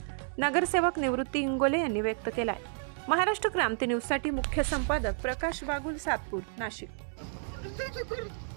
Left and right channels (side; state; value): left; silent; 57 dB below the other